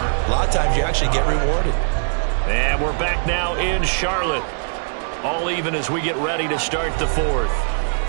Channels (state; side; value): silent; left; digital silence